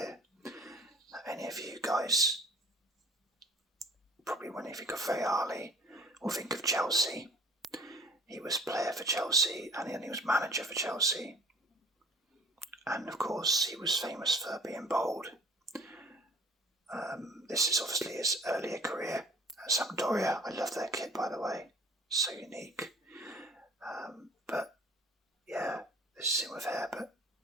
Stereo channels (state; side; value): normal; both; correlation 0.49